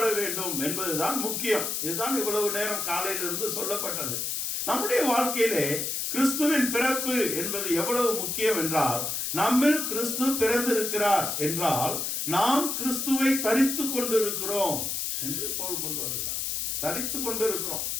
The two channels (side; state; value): left; noise; hiss, 2 dB below the sound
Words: வேண்டும் என்பதுதான் முக்கியம். இதுதான் இவ்வளவு நேரம் காலையிலிருந்து சொல்லப்பட்டது. நம்முடைய வாழ்க்கையிலே கிறிஸ்துவின் பிறப்பு என்பது எவ்வளவு முக்கியம் என்றால், நம்மில் கிறிஸ்து பிறந்திருக்கிறார் என்றால் நாம் கிறிஸ்துவை தரித்து கொண்டிருக்கிறோம் என்று பவுல் கொண்டு வருகிறார். தரித்து கொண்டிருக்கிறோம்.